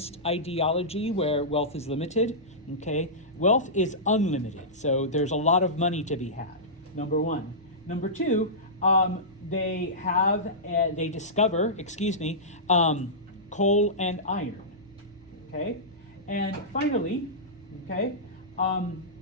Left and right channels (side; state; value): both; normal; correlation -0.17